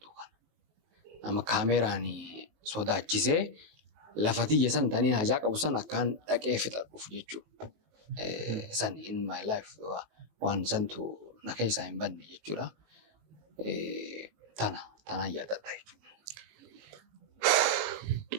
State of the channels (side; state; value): left; late; 19 ms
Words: kana. Nama kaameeraan sodaachisee lafa tiyya san tanii hajaa qabu san akkaan dhaqee fixadhuuf jechuudha. San in my life waan santu na keessaa hin banne jechuudha. Tana yaadadha jechuudha.